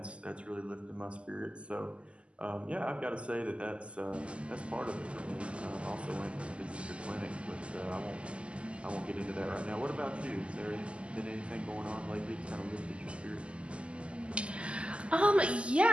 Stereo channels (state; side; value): late; left; 0.055 ms